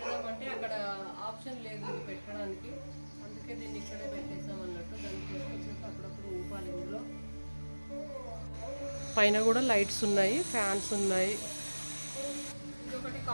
అక్కడ ఆప్షన్ లేదు ఇది పెట్టడానికి. అందుకే దీన్ని ఇక్కడే పెట్టేసాం అన్నట్టు. దాన్ని తీసుకొచ్చేసి అప్పుడప్పుడు ఊపాలి. ఇందులో పైన కూడా లైట్స్ ఉన్నాయి, ఫ్యాన్స్ ఉన్నాయి. ఇదొకటి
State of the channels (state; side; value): inverted; both; correlation -1.00